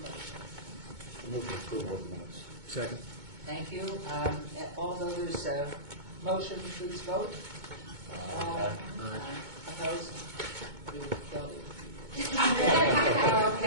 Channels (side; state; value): left; late; 2.2 ms